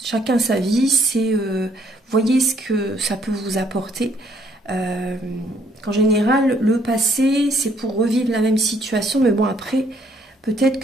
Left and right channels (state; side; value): normal; both; correlation 0.66